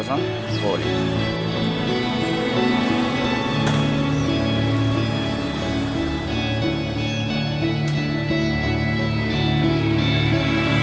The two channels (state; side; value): identical; both; correlation 1.00